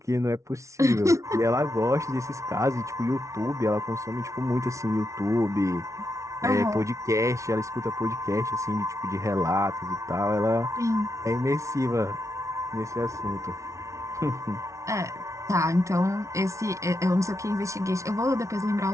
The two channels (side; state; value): left; late; 0.14 ms